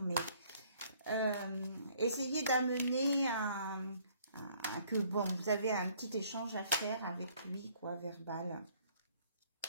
mais essayez d'amener que bon, vous avez un petit échange à faire avec lui, quoi, verbal.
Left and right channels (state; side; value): inverted; both; correlation -0.61